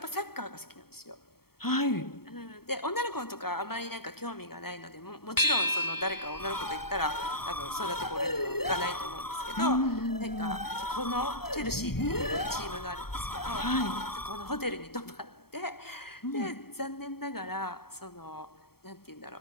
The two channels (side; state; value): right; late; 0.95 ms